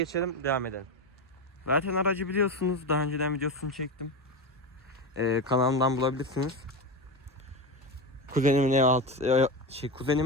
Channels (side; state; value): both; normal; correlation 0.18